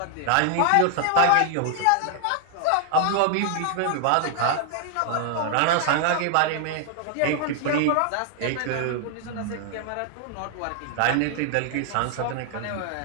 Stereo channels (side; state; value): both; different; correlation 0.00